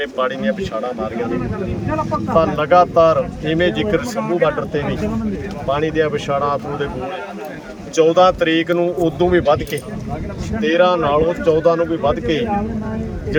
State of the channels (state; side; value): identical; both; correlation 1.00